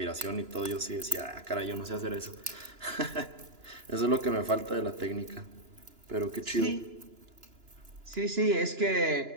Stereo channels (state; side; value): late; left; 2.9 ms